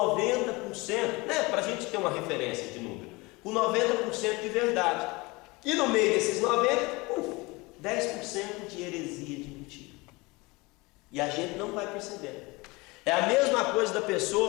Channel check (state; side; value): quieter; right; 24.3 dB